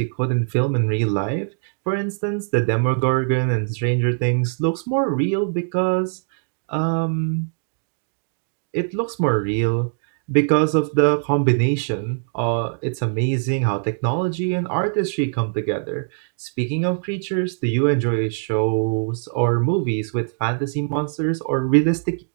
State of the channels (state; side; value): silent; left; digital silence